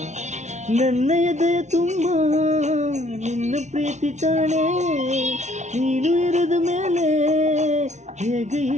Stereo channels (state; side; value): late; left; 0.33 ms